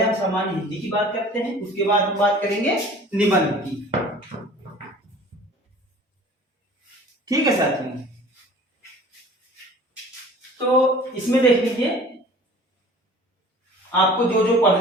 हम सामान्य हिंदी की बात करते हैं, उसके बाद हम बात करेंगे निबंध की। ठीक है साथियों, तो इसमें देख लीजिए आपको जो जो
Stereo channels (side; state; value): both; normal; correlation 0.46